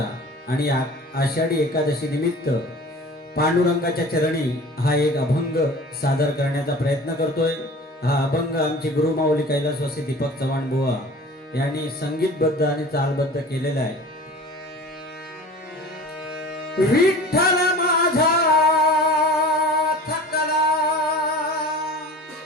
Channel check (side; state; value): both; normal; correlation 0.41